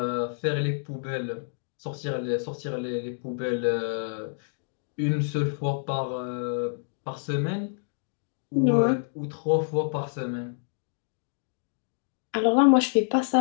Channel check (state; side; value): silent; right; digital silence